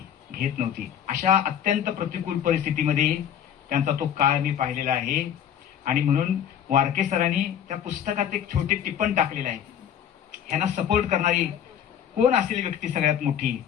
घेत नव्हती. अशा अत्यंत प्रतिकूल परिस्थितीमध्ये त्यांचा तो काळ मी पाहिलेला आहे. आणि म्हणून वारके सरांनी त्या पुस्तकात एक छोटे टिप्पण टाकलेलं आहे. ह्यांना सपोर्ट करणारी कोण असेल व्यक्ती सगळ्यात मोठी,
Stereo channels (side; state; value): right; quieter; 9.3 dB